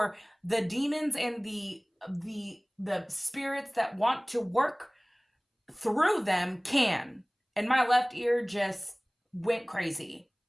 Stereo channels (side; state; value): both; identical; correlation 1.00